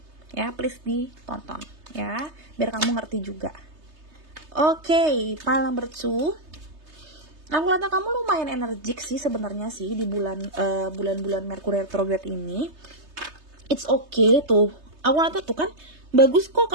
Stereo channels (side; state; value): left; late; 3.3 ms